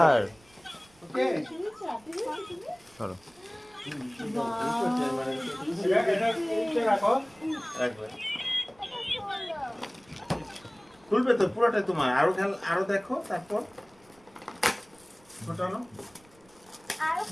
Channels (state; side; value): noise; right; rumble, 29 dB below the sound